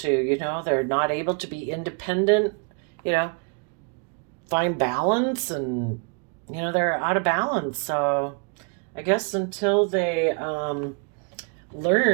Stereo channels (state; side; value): quieter; left; 37.1 dB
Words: they're not able to be independent, find balance, and, they're out of balance. So I guess until they